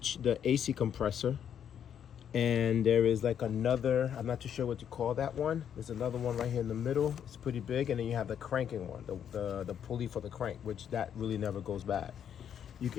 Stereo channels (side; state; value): right; quieter; 8.9 dB